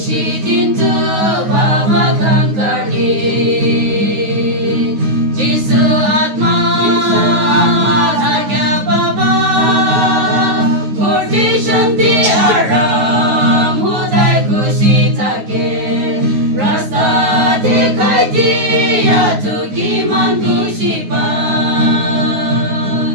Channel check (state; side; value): late; left; 9.4 ms